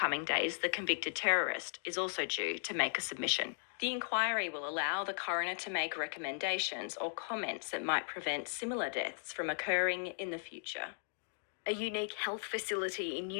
days, the convicted terrorist is also due to make a submission. The inquiry will allow the coroner to make recommendations or comments that might prevent similar deaths from occurring in the future. A unique health facility in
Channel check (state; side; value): silent; right; digital silence